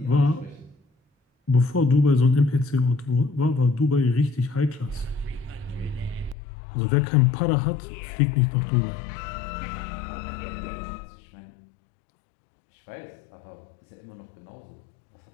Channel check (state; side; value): drops out; right; at 6.4 s